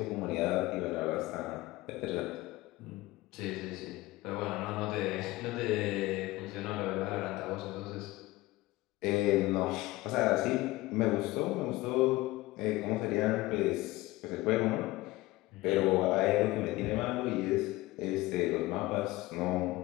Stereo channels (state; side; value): quieter; right; 19.1 dB